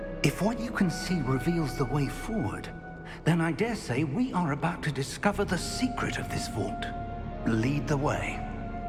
If what you can see reveals the way forward, then I dare say we are about to discover the secret of this vault. Lead the way.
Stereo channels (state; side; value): identical; both; correlation 1.00